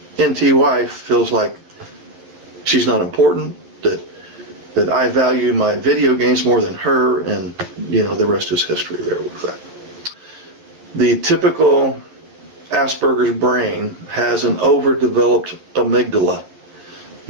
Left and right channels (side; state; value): left; late; 11 ms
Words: NT wife feels like she's not important, that I value my video games more than her, and the rest is history there with that. The typical Asperger's brain has an overdeveloped amygdala,